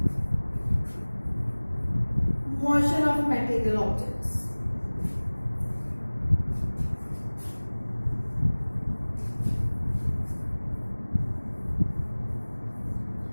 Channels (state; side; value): inverted; both; correlation -1.00